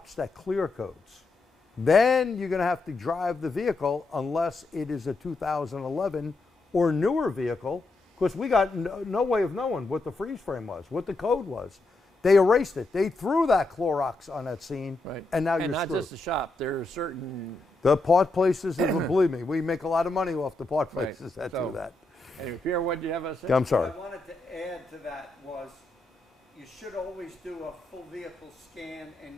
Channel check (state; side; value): quieter; right; 3.1 dB